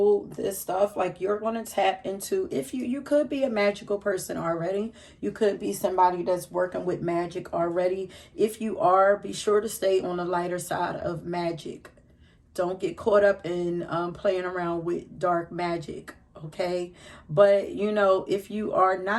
this stuff, you're going to tap into, if you could be a magical person already. You could be somebody that's working with magic already. If you are, be sure to stay on the lighter side of magic. Don't get caught up in playing around with dark magic. okay? But, you know, if you are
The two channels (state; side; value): identical; both; correlation 1.00